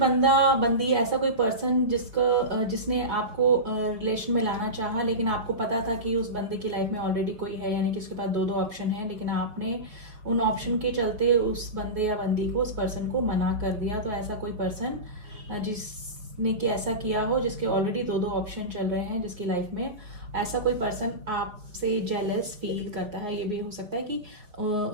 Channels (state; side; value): late; left; 4.8 ms